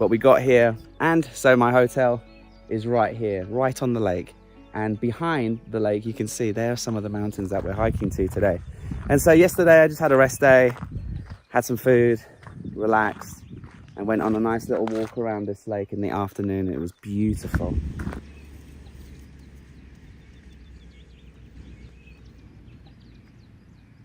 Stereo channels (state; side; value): identical; both; correlation 1.00